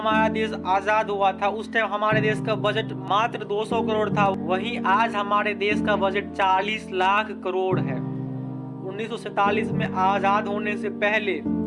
देश आज़ाद हुआ था उस टाइम हमारे देश का बजट मात्र 200 करोड़ था, वहीं आज हमारे देश का बजट 40 लाख करोड़ है। 1947 में आज़ाद होने से पहले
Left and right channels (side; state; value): both; identical; correlation 1.00